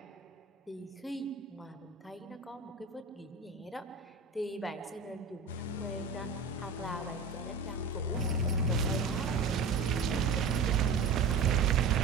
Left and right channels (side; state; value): left; quieter; 4.5 dB